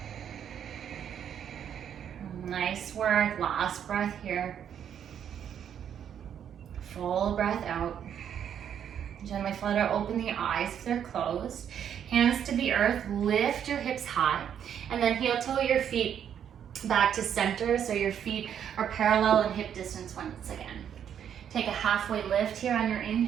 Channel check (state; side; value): quieter; left; 8.9 dB